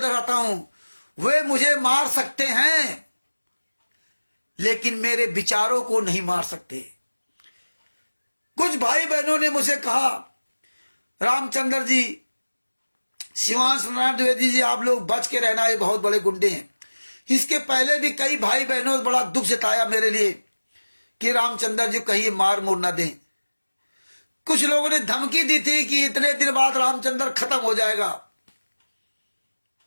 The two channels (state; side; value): inverted; both; correlation -1.00